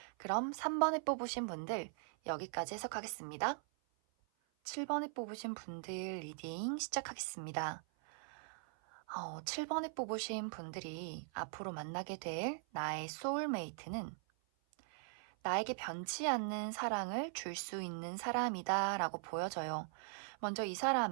그럼 3번에 뽑으신 분들 여기까지 해석하겠습니다. 7번에 뽑으신 분들 리딩 시작하겠습니다. 7번에 뽑으신 분들이 앞으로 만나게 될 나의 소울메이트는 나에게 변치 않는 사랑을 줄 수 있는 사람이다 라고 보여져요. 먼저 이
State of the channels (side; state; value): left; silent; 51 dB below the other